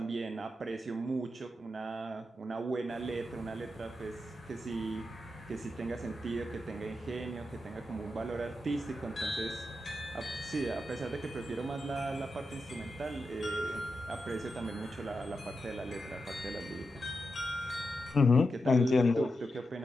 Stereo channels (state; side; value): normal; both; correlation 0.87